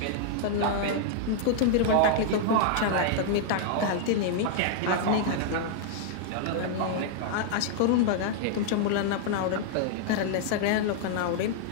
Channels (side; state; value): both; different; correlation -0.01